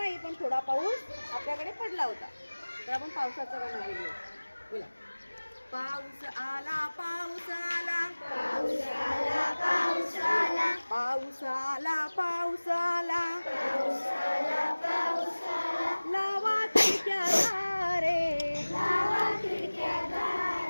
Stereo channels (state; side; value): inverted; both; correlation -1.00